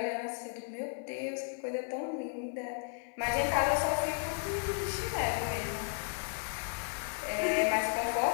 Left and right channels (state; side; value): silent; right; 55 dB below the other